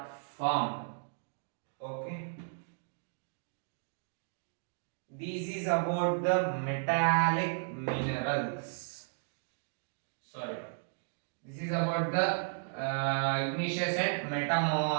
formed. Okay. This is about the metallic minerals. Sorry. This is about the igneous and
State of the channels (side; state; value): left; silent; digital silence